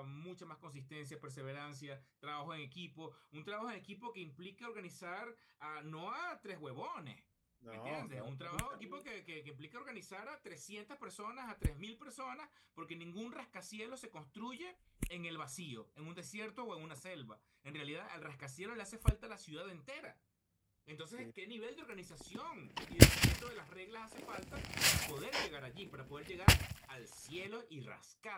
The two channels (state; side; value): identical; both; correlation 1.00